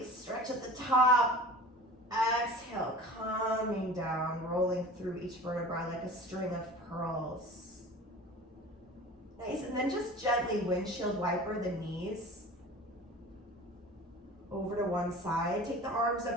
stretch at the top. Exhale, coming down, rolling through each vertebra like a string of pearls. Nice, and then just gently windshield wiper the knees over to one side. Take the arms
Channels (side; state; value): both; normal; correlation 0.39